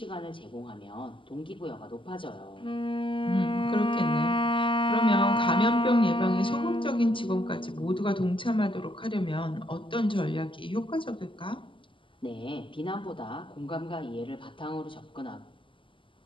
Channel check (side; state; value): right; late; 0.25 ms